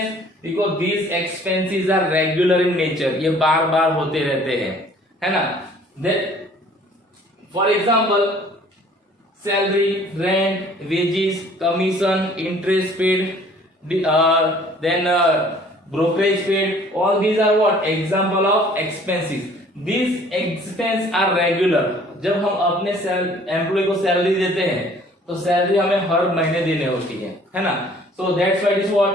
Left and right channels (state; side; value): normal; both; correlation 0.54